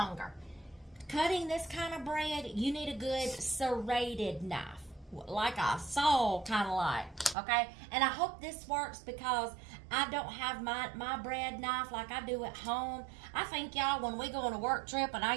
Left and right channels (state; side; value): drops out; left; at 7.4 s